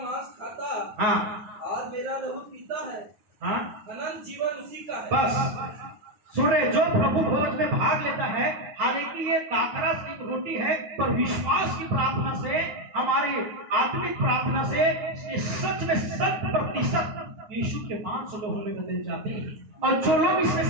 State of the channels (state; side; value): late; left; 9.5 ms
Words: खाता, हाँ, और मेरा लहू पीता है, हाँ, अनंत जीवन उसी का है। बस सुन रहे, जो प्रभु भोज में भाग लेता है, हालांकि ये दाखरस की रोटी है, पर विश्वास की प्रार्थना से, हमारी आत्मिक प्रार्थना से ये सच में 100% यीशु के मांस लोगों में बदल जाते हैं, और जो लोग इसमें